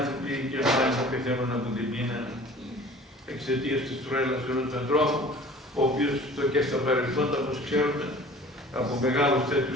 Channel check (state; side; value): normal; both; correlation 0.46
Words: και να πεθαίνουν από την πείνα εξαιτίας της τρέλας ενός ανθρώπου, ο οποίος και στα παρελθόντα, όπως ξέρουμε, από μεγάλους